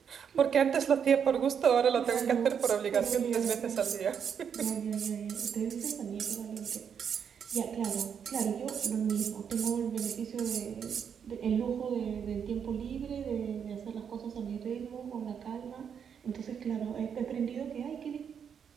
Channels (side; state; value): left; quieter; 7.5 dB